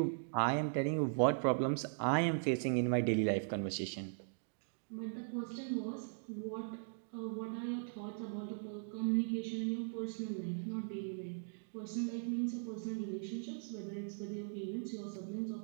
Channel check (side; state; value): left; silent; digital silence